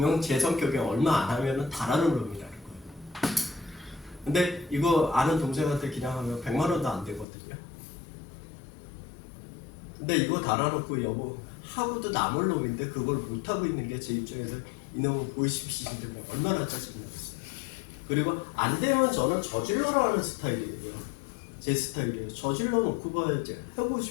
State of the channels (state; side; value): drops out; right; at 7.2 s